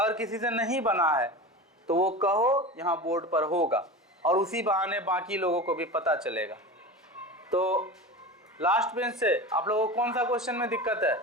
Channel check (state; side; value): normal; both; correlation 0.29